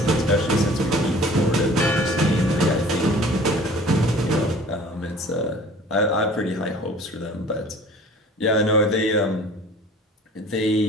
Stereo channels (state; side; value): normal; both; correlation 0.47